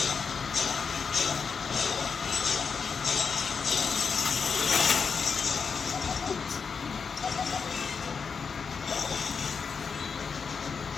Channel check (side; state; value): right; quieter; 5.7 dB